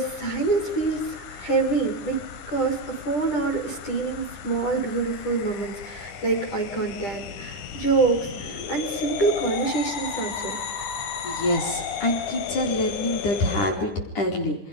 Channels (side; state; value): right; late; 10 ms